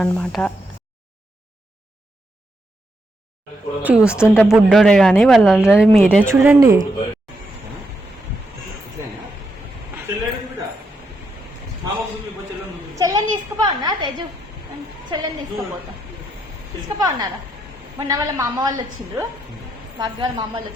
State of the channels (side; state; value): both; normal; correlation 0.81